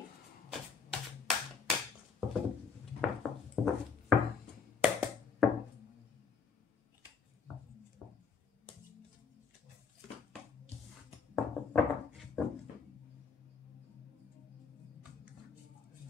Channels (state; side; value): quieter; right; 5.8 dB